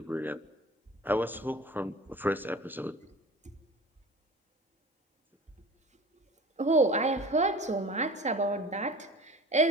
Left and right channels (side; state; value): both; normal; correlation 0.40